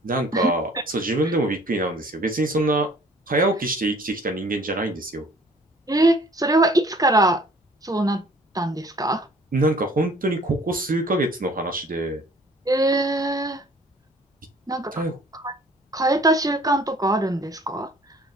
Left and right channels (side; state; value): both; normal; correlation 0.54